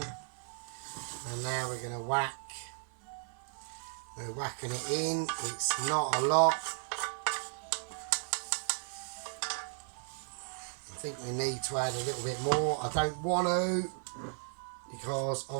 and now we're going to whack. We're whacking it in. It's not a lot. I think we need to add a little bit more. I don't want to, because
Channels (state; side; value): silent; left; 54 dB below the other